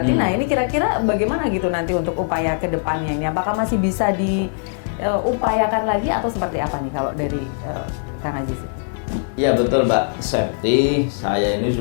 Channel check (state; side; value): silent; right; digital silence